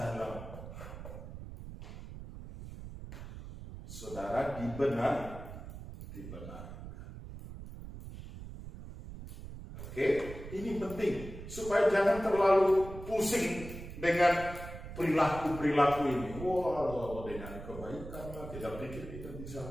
saudara dibenarkan. Oke, ini penting supaya jangan terlalu pusing dengan perilaku ini. Wah, dengan kebaikan lah, kita pikir kita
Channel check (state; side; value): noise; right; rumble, 11 dB below the sound